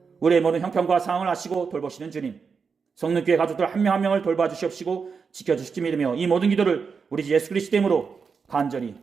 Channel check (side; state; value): left; quieter; 5.6 dB